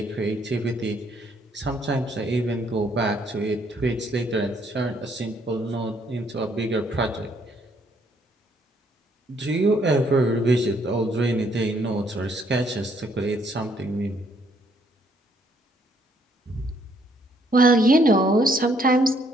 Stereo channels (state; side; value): normal; both; correlation 0.68